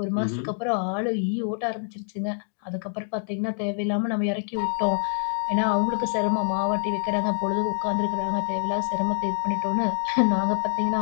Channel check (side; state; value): right; silent; digital silence